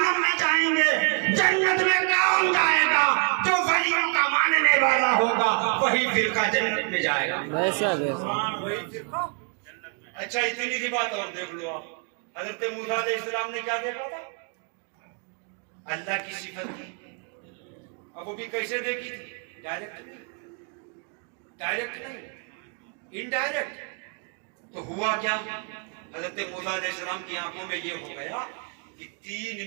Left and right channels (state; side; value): quieter; left; 39.6 dB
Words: में जाएंगे। जन्नत में कौन जाएगा? जो वलियों का मानने वाला होगा वही फिरका जन्नत में जाएगा। वैसा वही फिरका। अच्छा इतनी सी बात और देख लो आप, हजरत मूसा अलैहिस्सलाम ने क्या देखा था? अल्लाह की सिफत थी। अब वो भी कैसे देखी थी? डायरेक्ट नहीं, इनडायरेक्ट। तो हुआ क्या, हजरत मूसा अलैहिस्सलाम की आंखों में ये हो गया कि 3